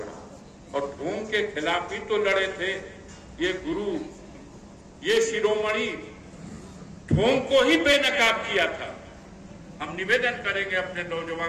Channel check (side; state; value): both; identical; correlation 1.00